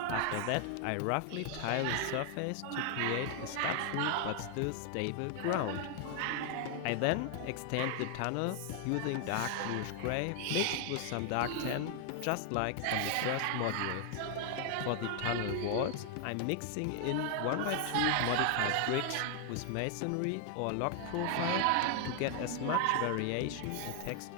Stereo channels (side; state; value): both; different; correlation 0.00